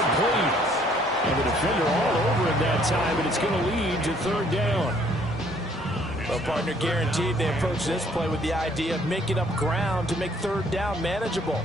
And the defender all over him that time, and it's going to lead to 3rd down. Well, partner, guaranteed they approach this play with the idea of making up ground to make 3rd down manageable.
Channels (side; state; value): both; normal; correlation 0.62